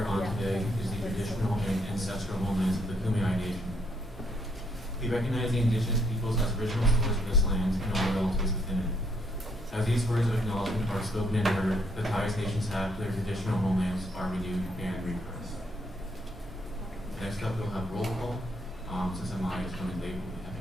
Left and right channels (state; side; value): normal; both; correlation 0.71